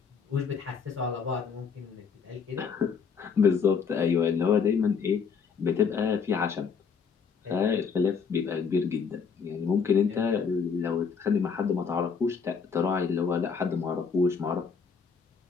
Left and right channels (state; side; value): quieter; right; 6.0 dB